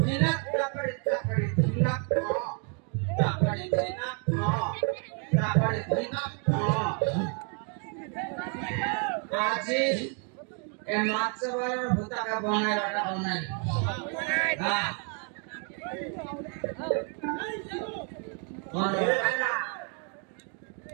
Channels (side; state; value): left; quieter; 39.3 dB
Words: Hinak takari hinak takari hinak Aji emat sebar buta ka bonai rada bonai